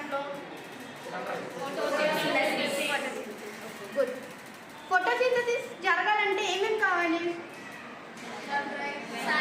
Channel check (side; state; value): both; identical; correlation 1.00